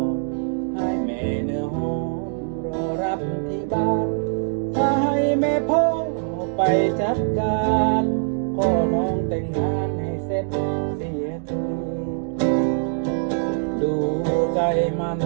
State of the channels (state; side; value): silent; left; 63 dB below the other